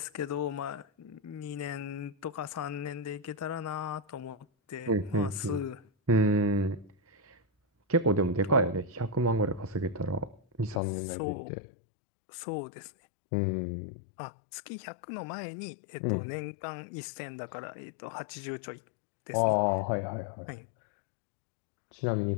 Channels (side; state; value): right; drops out; at 10.8 s